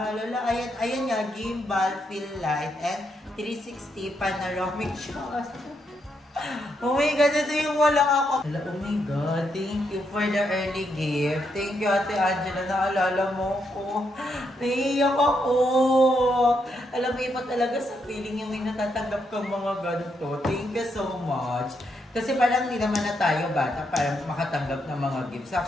Hala, ayan nga, gimbal, feel light, and 360 panoramic shot. Oh my God, ito yung walang ako. Hala, oh my God, thank you for the early gift. Thank you, Ate Angela, naalala mo ko. Naiiyak ako. Alam mo, iba talaga sa feeling yung may natatanggap kang mga ganito. Thank you so much. Kasi parang hindi naman na tayo bata parang makatanggap ng mga gifts.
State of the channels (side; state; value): both; normal; correlation 0.79